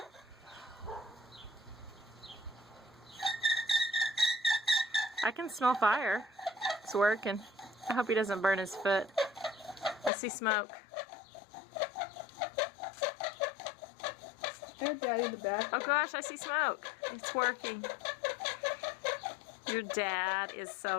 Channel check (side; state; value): right; drops out; at 10.1 s